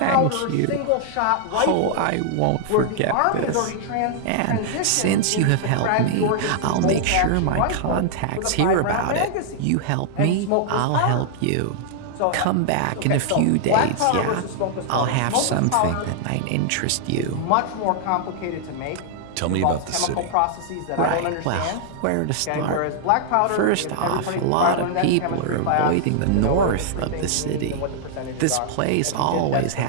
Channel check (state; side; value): different; both; correlation -0.01